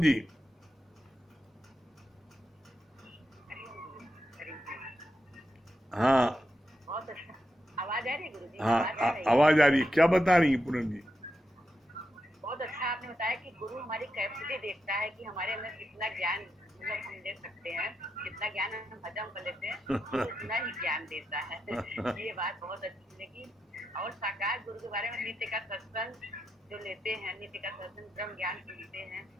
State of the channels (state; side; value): normal; both; correlation 0.86